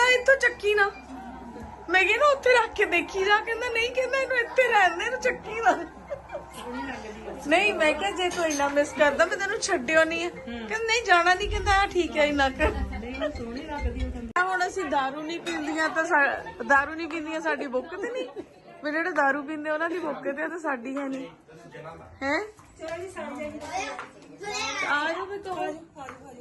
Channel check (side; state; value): both; identical; correlation 1.00